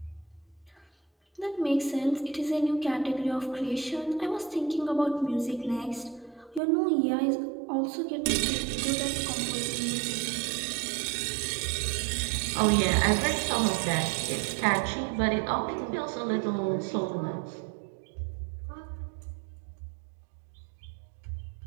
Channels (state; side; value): drops out; left; at 6.6 s